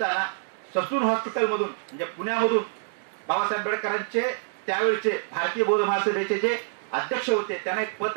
ससून हॉस्पिटलमधून म्हणजे पुण्यामधून बाबासाहेब आंबेडकरांचे त्यावेळेचे भारतीय बौद्ध महासभेचे जे अध्यक्ष होते त्यांना एक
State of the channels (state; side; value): silent; left; digital silence